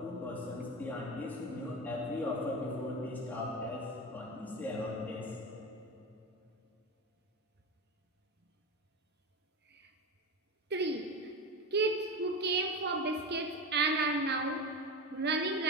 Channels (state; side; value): normal; both; correlation 0.22